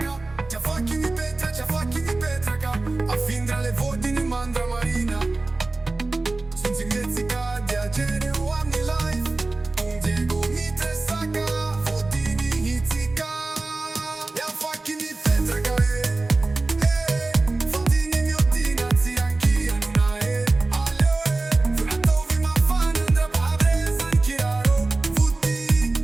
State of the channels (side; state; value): left; quieter; 3.2 dB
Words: Zia facchi mi petraca A findra le vodini mandra marina Sunt in mețica De agere o am ni life Diego mi tresaca Vodini hițica Ia facchi mi petraca Vodini mi odina Zi anch'ia nuna Aleo Furato vi ma fan Andra pabreza Anchiaro Vuti